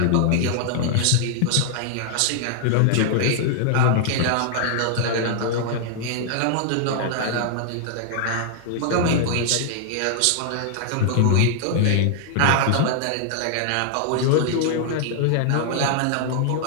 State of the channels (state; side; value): different; both; correlation -0.01